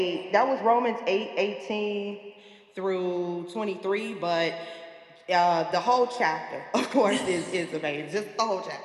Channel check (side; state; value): both; identical; correlation 1.00